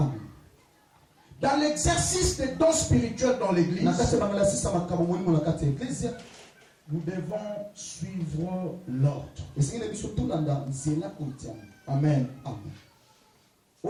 Dans l'exercice des dons spirituels dans l'église, nous devons suivre l'ordre. Amen.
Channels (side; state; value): both; identical; correlation 1.00